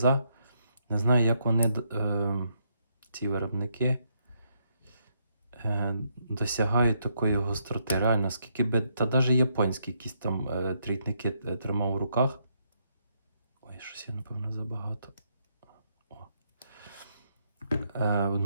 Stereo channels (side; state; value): both; inverted; correlation -0.76